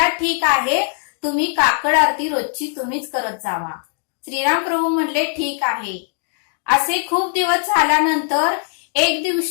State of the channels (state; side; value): silent; right; digital silence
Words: ठीक आहे, तुम्ही काकड आरती रोजची तुम्हीच करत जावा. श्रीराम प्रभू म्हणले ठीक आहे. असे खूप दिवस झाल्यानंतर एक